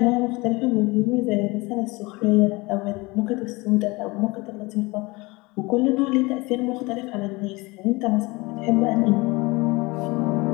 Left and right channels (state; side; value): quieter; right; 23.9 dB